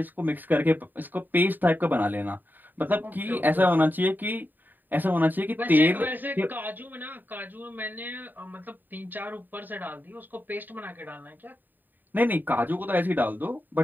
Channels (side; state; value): left; late; 0.090 ms